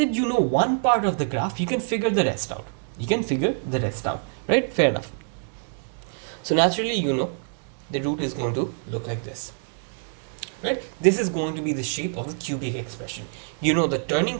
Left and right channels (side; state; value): left; silent; digital silence